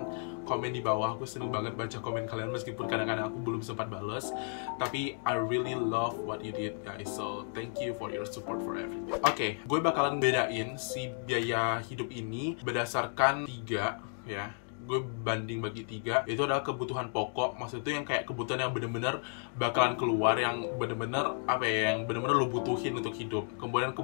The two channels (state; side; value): silent; right; 56 dB below the other